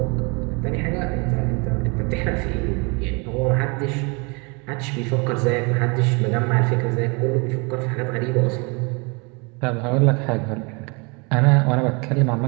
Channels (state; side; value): quieter; left; 30.9 dB